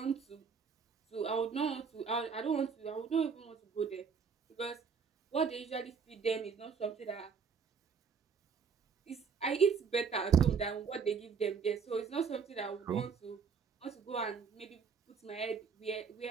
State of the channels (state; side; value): quieter; left; 6.0 dB